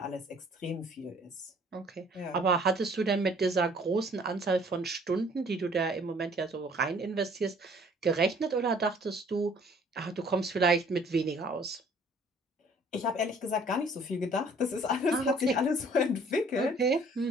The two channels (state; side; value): normal; both; correlation 0.57